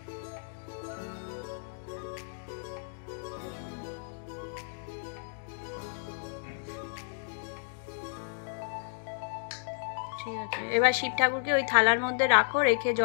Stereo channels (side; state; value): right; silent; digital silence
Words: ঠিক আছে, এবার শিব ঠাকুরকে ওই থালার মধ্যে রাখো, রেখে